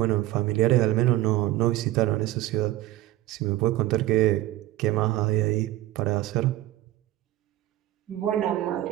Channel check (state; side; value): quieter; left; 15.4 dB